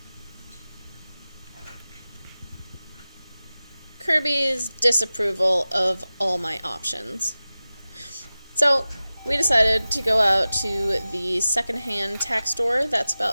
Kirby's disapproval of all my options. So we decided to go out to the secondhand tack store that's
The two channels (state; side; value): inverted; both; correlation -0.96